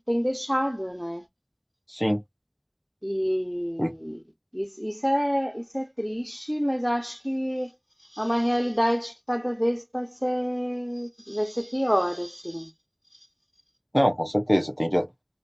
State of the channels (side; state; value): both; identical; correlation 1.00